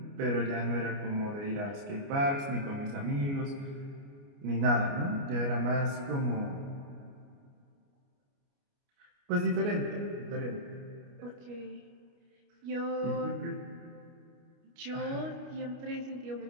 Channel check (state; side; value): late; left; 29 ms